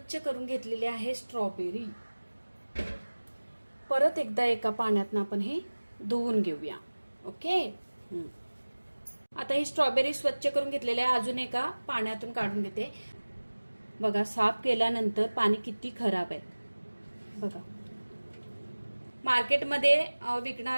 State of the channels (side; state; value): both; inverted; correlation -1.00